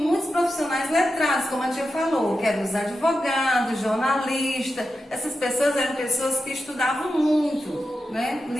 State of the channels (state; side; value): normal; both; correlation 0.90